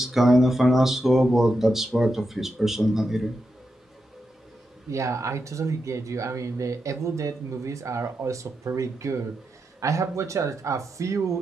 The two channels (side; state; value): both; normal; correlation 0.87